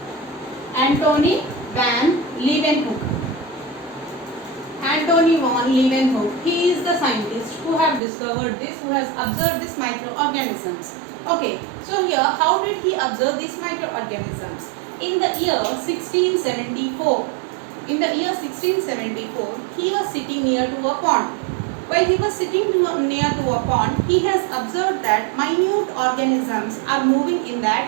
Antony van Leeuwenhoek. Antony van Leeuwenhoek. He is the scientist who have discovered this, who has observed these microorganisms. Okay, so here how did he observe these microorganisms? In the year 1674. In the year 1674, he was sitting near to a pond. While he was sitting near to a pond, he has observed that minute organisms are moving in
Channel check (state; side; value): drops out; left; at 8.0 s